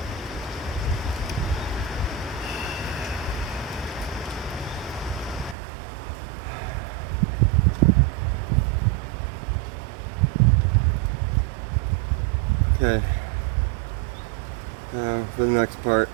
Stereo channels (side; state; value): left; drops out; at 5.6 s